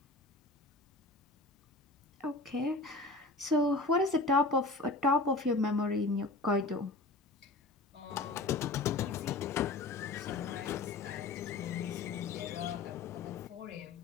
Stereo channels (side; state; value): right; quieter; 3.3 dB